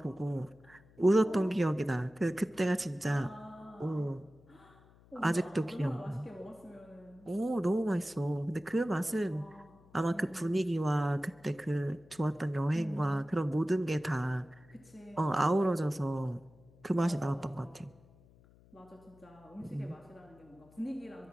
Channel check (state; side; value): noise; left; hum, 26 dB below the sound